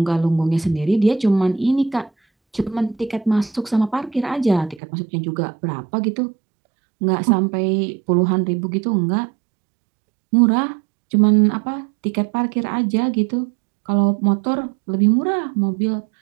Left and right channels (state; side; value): drops out; left; at 4.8 s